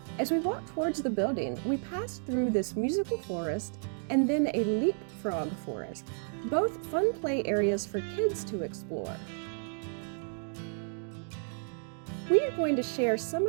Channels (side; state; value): left; silent; 57 dB below the other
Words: As we walked towards the building, we passed through this musical forest and then a leapfrog forest, both fun play areas for kids to explore. We are going to share some